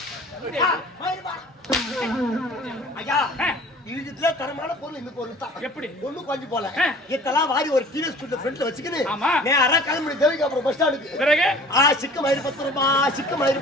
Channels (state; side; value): normal; both; correlation 0.46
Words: மயிறுடா ஐயா இதுல தரமான பொருள் இந்த பொருள் தான் எப்படி ஒண்ணு கொஞ்சம் போல இதெல்லாம் வாரி ஒரு டிவி ஸ்கூல்ல ஃப்ரண்ட்ல வச்சுக்கினு ஆமா நேரா கிளம்பி தேவிக்கு அப்புறம் பஸ் ஸ்டாண்டுக்கு பிறகு சிக்கு மயிறு 10 ரூபாய் சிக்கு மயிறு